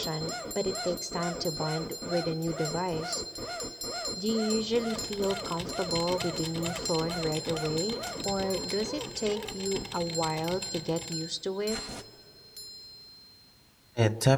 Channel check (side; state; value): both; identical; correlation 1.00